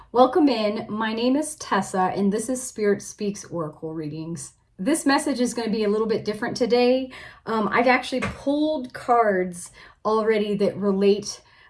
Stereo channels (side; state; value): both; identical; correlation 1.00